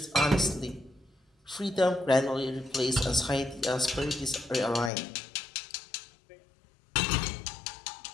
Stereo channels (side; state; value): right; drops out; at 4.9 s